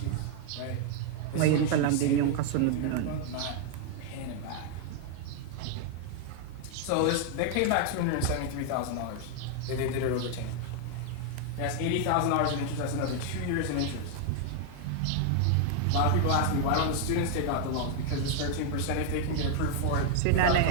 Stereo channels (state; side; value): different; both; correlation 0.00